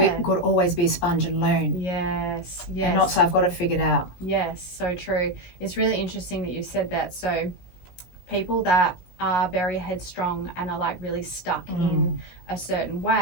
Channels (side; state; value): right; late; 17 ms